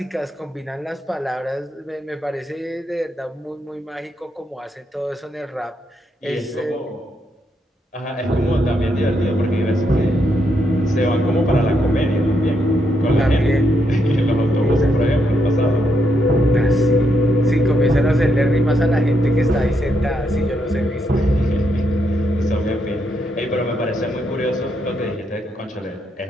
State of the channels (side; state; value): both; normal; correlation 0.79